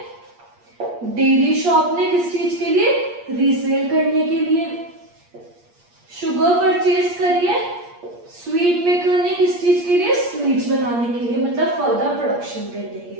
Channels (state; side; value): late; left; 8.5 ms